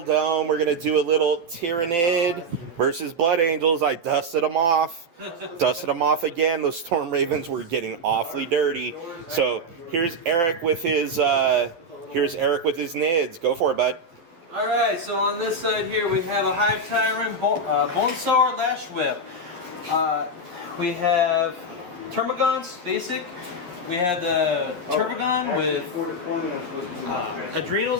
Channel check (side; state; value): left; late; 12 ms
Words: We're going to do a little Tyranid versus Blood Angels. I dusted them off. Dusted them off again. Those Storm Ravens were getting awfully dirty. So here's Eric with his Nids. Go for it, bud. All right, so on this side here we have a Hive Tyrant, Bonesaur, Lash Whip. We have Termagants, basic. We had the Turbogon with